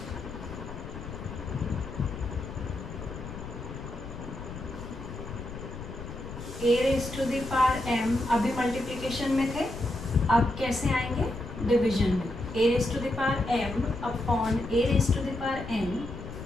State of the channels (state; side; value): noise; left; rumble, 10 dB below the sound